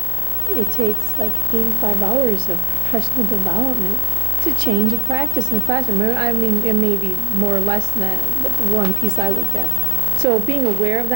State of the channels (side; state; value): both; normal; correlation 0.46